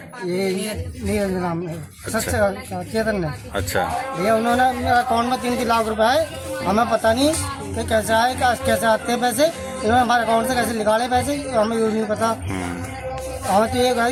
ये नीरज नाम है, चेतन ने। अच्छा भैया उन्होंने मेरा अकाउंट में 3 लाख रुपए आए। हमें पता नहीं कि कैसे आए, कैसे आते हैं पैसे। इन्होंने हमारे अकाउंट से कैसे निकाले पैसे, हमें ये नहीं पता। हमें तो ये है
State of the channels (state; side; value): identical; both; correlation 1.00